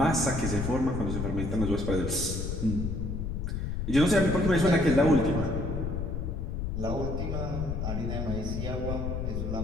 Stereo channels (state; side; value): noise; left; rumble, 3 dB below the sound